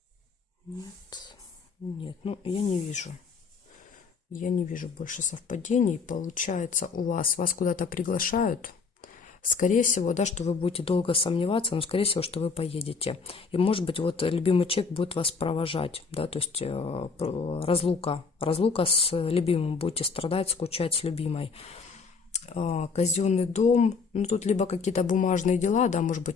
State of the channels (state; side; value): quieter; right; 5.1 dB